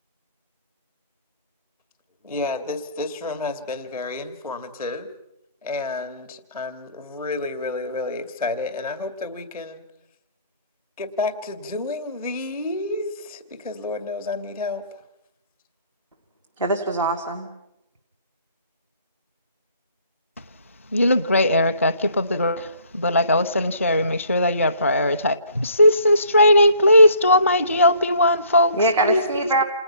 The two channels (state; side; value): inverted; both; correlation -0.59